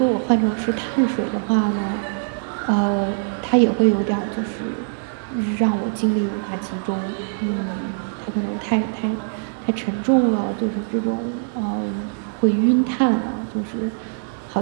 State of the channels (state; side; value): silent; left; digital silence